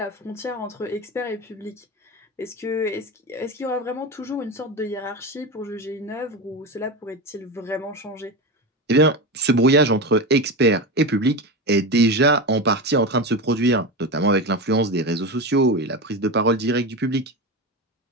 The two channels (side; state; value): both; normal; correlation 0.21